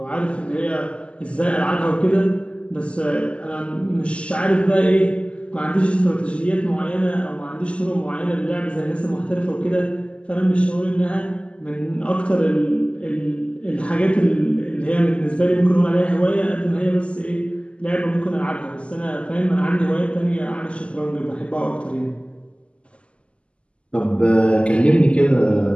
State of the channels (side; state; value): right; late; 0.056 ms